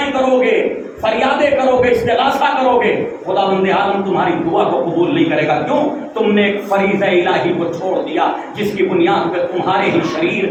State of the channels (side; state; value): both; identical; correlation 1.00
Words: کرو گے، فریادیں کرو گے، استغاثہ کرو گے، خداوند عالم تمہاری دعا کو قبول نہیں کرے گا۔ کیوں؟ تم نے ایک فریضہ الہی کو چھوڑ دیا جس کی بنیاد پہ تمہارے ہی